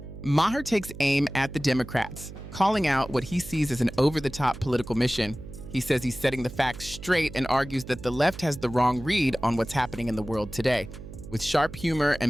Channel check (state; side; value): noise; right; hum, 14 dB below the sound